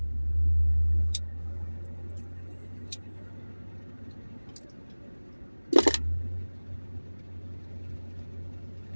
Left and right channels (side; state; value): both; inverted; correlation -1.00